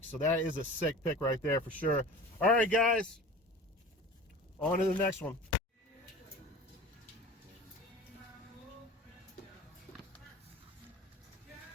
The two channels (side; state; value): both; normal; correlation 0.38